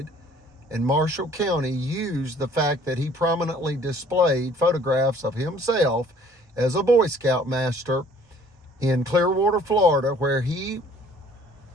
And Marshall County used the fact that he prominently displayed photographs of himself as a Boy Scout master in Clearwater, Florida, where he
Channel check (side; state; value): both; normal; correlation 0.56